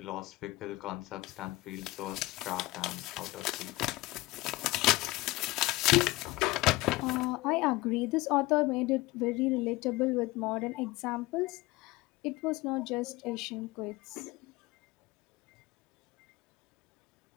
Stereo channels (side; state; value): right; quieter; 20.3 dB